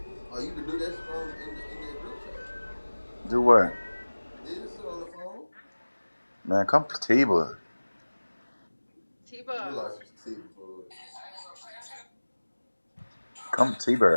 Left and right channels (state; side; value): inverted; both; correlation -1.00